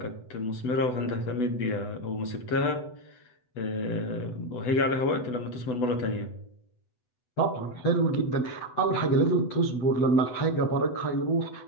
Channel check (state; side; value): late; right; 8.0 ms